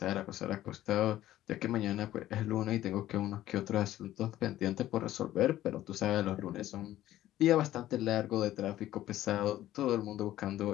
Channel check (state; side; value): quieter; right; 13.9 dB